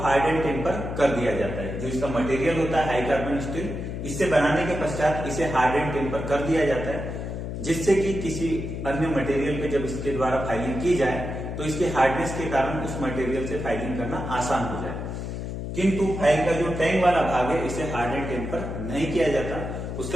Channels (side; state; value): left; noise; hum, 5 dB below the sound